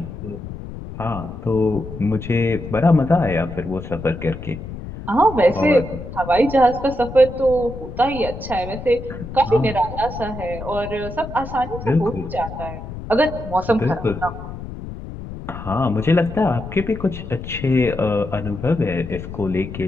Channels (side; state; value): left; noise; rumble, 10 dB below the sound